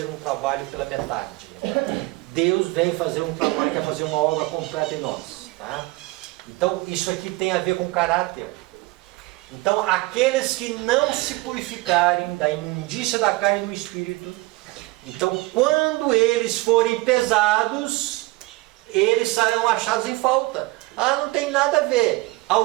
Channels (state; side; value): quieter; left; 21.9 dB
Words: um trabalho pela metade. Deus vem fazer um trabalho, quer fazer uma obra completa em nós. Tá? Então isso aqui tem a ver com caráter. Então aqueles que não se purificarem da imundícia da carne e do espírito, então quando eles forem pesados, eles serão achados em falta. Ah, não tem nada a ver.